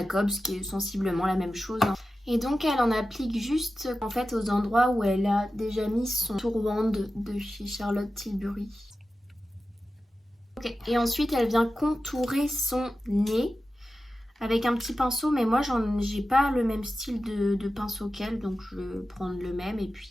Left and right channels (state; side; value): normal; both; correlation 0.93